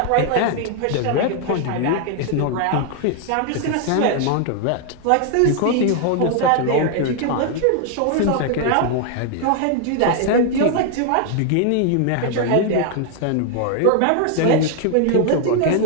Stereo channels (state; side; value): different; both; correlation 0.00